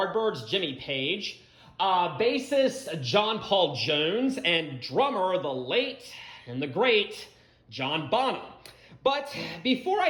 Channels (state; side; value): identical; both; correlation 1.00